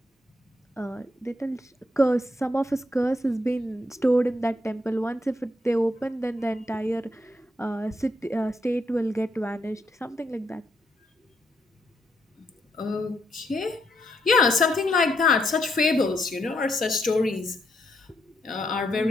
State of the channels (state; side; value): normal; both; correlation 0.77